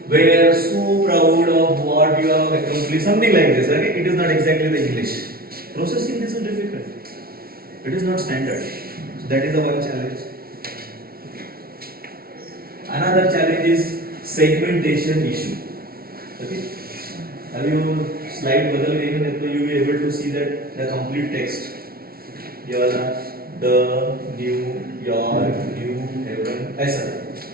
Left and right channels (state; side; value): late; left; 0.44 ms